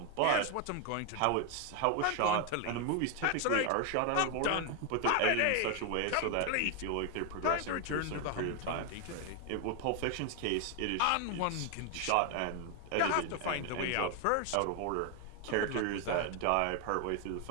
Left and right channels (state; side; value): different; both; correlation 0.01